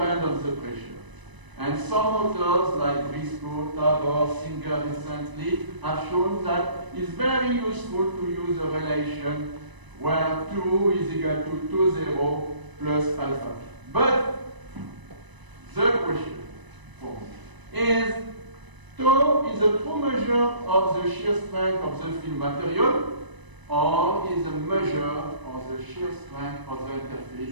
on the pressure. And some authors like Briscoe, Tabor, Singer recently have shown that it's very useful to use a relation where 2 is equal to 2,0 plus alpha. But the question for me is, tau is a true measure of the shear strength of the film material, or is a measure of the shear strength of the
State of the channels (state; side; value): late; left; 1.0 ms